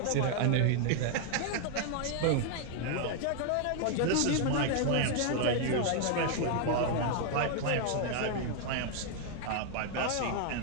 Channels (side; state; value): both; different; correlation 0.00